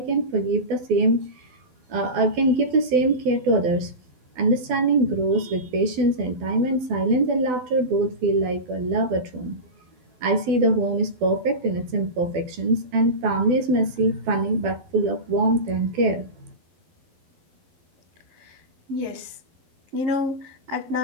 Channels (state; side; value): late; left; 12 ms